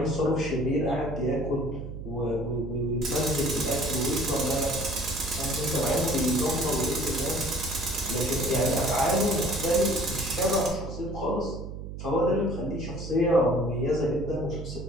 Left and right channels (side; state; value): right; noise; hum, 9 dB below the sound